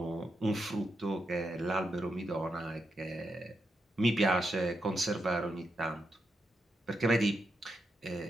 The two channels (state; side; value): normal; both; correlation 0.84